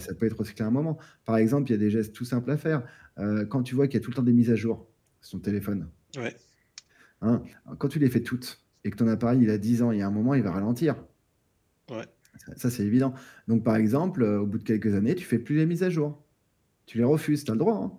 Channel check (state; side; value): identical; both; correlation 1.00